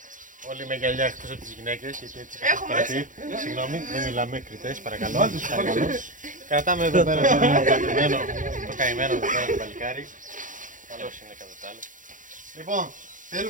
Όλοι με γυαλιά εκτός από τις γυναίκες, γιατί έτσι είχα παρατηρήσει. Συγγνώμη, δεν μιλάμε κριτές, παρακαλώ. Κρατάμε εδώ πέρα το καημένο εδώ πέρα το παλικάρι. Καλώς είναι κατά τα άλλα. Λοιπόν,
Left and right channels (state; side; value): late; left; 0.38 ms